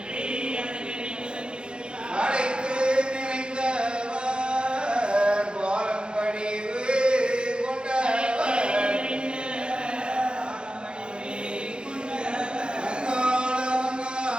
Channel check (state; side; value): late; left; 0.051 ms